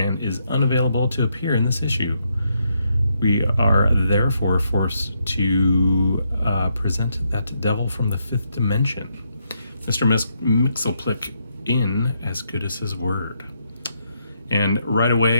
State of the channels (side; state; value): both; inverted; correlation -0.78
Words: is unavailable to appear in this issue. We are therefore forced to present that devil from the fifth dimension, Mr. Myxlplyx, in as good as his word. And right